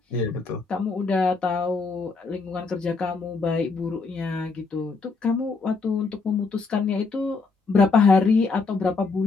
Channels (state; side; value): quieter; right; 4.2 dB